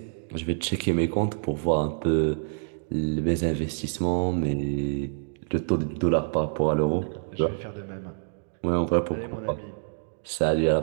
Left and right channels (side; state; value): left; silent; digital silence